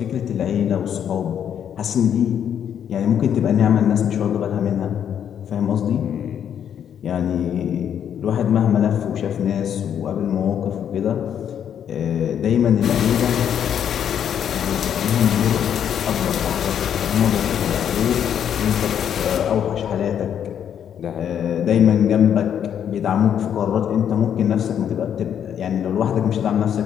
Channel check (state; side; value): quieter; right; 9.0 dB